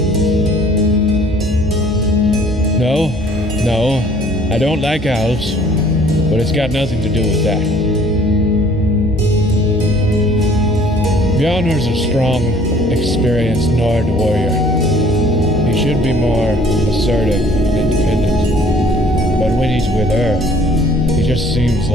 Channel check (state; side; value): normal; both; correlation 0.56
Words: No, I don't like elves, but it's got nothing to do with that. Bjarnor's a strong, experienced Nord warrior. He should be more assertive and independent. But when he's with her, he just seems